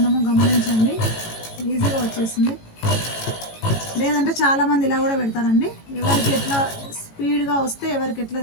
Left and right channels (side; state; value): right; late; 18 ms